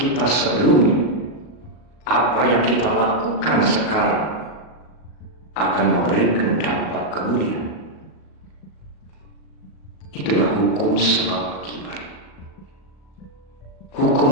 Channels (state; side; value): late; right; 37 ms